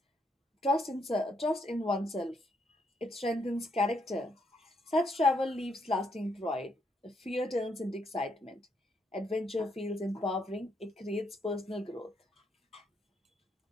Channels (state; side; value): normal; both; correlation 0.75